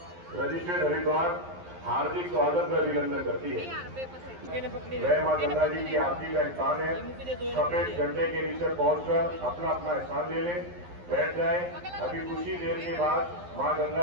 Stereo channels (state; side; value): late; left; 11 ms